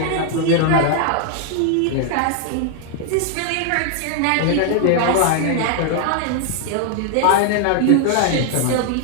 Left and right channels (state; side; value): different; both; correlation 0.00